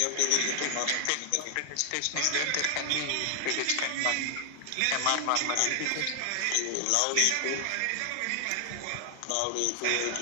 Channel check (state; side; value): different; both; correlation 0.00